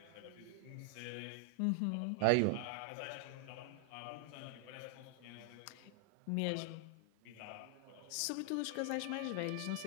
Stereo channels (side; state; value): both; different; correlation 0.00